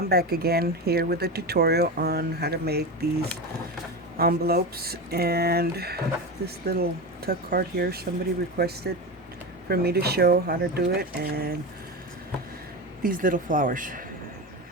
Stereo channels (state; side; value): normal; both; correlation 0.21